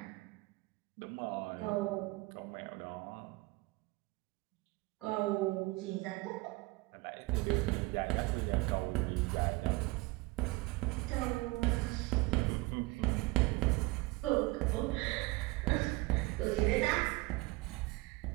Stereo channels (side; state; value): left; quieter; 22.5 dB